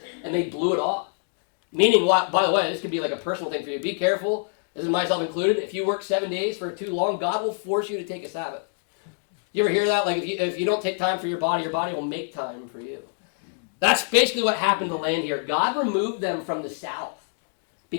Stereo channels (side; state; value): right; silent; digital silence